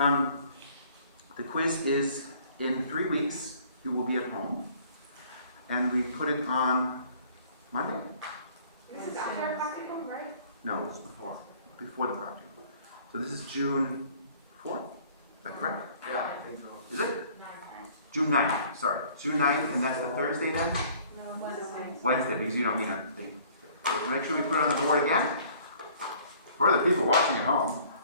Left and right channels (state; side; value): inverted; both; correlation -0.55